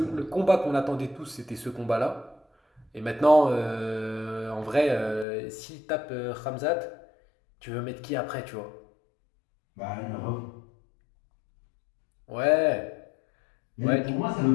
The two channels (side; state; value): right; drops out; at 5.2 s